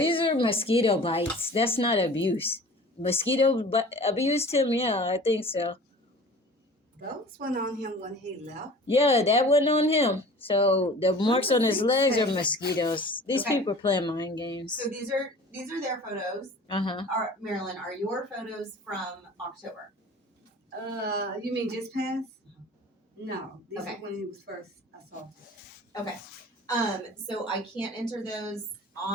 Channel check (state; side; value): normal; both; correlation 0.43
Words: are mosquito bites. That's not abuse. Abused him? Yeah, I think so. Those went on him when he left. Yeah, that wasn't on him. So the marks on his legs are Okay. mosquitoes. These Okay. people are playing mind games. So these are their photos. Uh-huh. Marilyn, are your photos from October? You mean just passed? No, these Okay. are when he was first assaulted. Okay. So I can't enter those